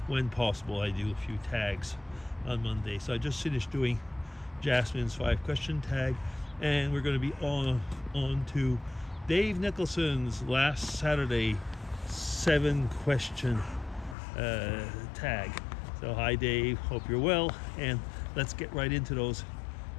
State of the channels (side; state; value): right; drops out; at 14.2 s